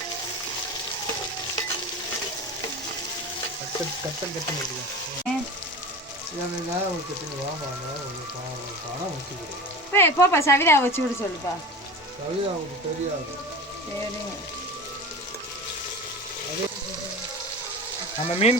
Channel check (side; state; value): both; normal; correlation 0.31